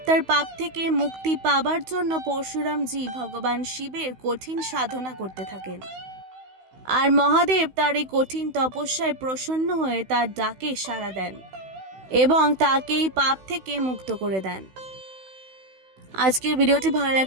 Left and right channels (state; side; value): late; left; 16 ms